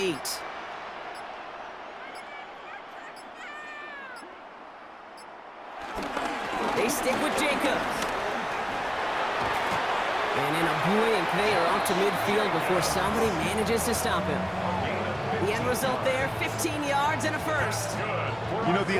They stick with Jacobs. And in a blink, they are off to midfield before somebody manages to stop him. The end result there, 15 yards and a first. You know, the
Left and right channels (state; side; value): identical; both; correlation 1.00